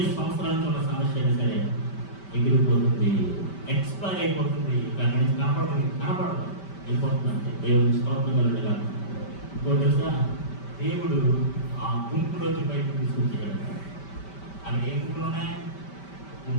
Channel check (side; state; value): right; late; 5.1 ms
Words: సంవత్సరాల నుంచి ఉన్న సమస్య అయినా సరే ఎగిరిపోతుంది, ఎక్స్పైర్ అయిపోతుంది, దాని నుంచి కనపడదు అయిపోతుంది. అంటే దేవుడికి స్తోత్రం కలుగుగా. ఇంకో తెలుసా, దేవుడు ఆ గుంపులోంచి బయటకు తీసుకొచ్చాడు. అక్కడ ఏ గుంపులు ఉన్నాయి?